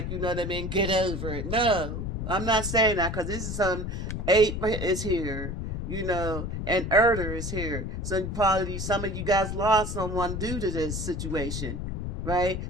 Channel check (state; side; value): noise; left; rumble, 4 dB below the sound